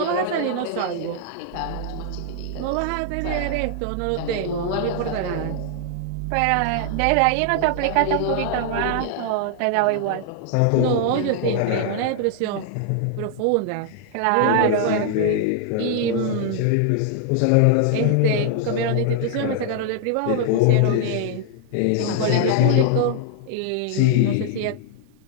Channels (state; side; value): different; both; correlation 0.00